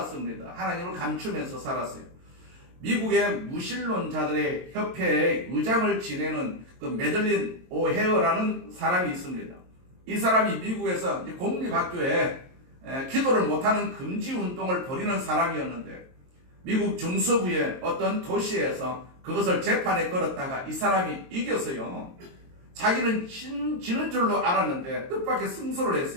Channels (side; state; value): left; late; 22 ms